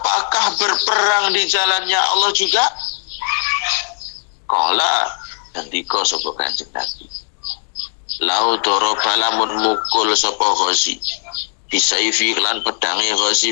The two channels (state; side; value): silent; right; digital silence